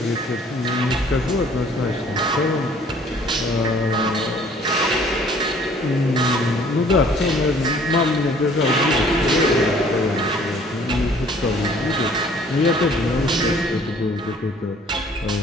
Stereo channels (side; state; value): both; normal; correlation 0.56